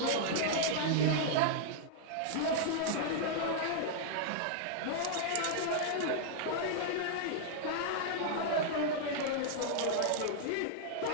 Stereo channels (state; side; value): different; both; correlation -0.01